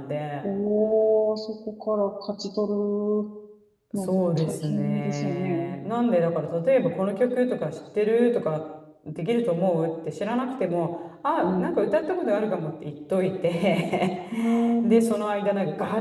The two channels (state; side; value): identical; both; correlation 1.00